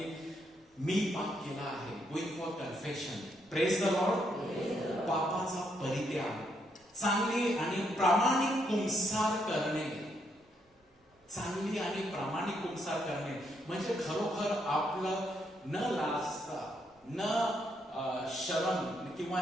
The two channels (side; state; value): both; normal; correlation 0.76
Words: मी पाप केला आहे. Going for confession. Praise the lord. पापाचा परित्याग, चांगली आणि प्रामाणिक कुंसार करणे, चांगली आणि प्रामाणिक कुंसार करणे म्हणजे खरोखर आपलं न लाजता, न शरम किंवा